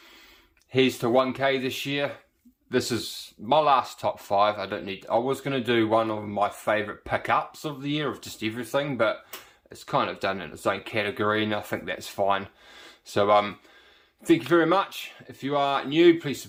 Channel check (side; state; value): both; identical; correlation 1.00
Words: Here's to 1K this year. This is my last top 5. I was going to do one of my favourite pickups of the year of just everything, but it's kind of done in its own category, and I think that's fine. So thank you very much. If you are new, please